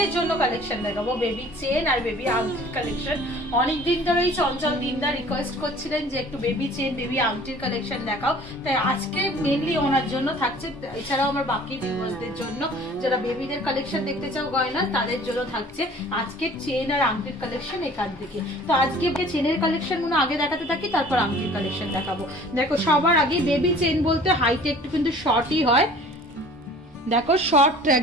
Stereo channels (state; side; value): normal; both; correlation 0.49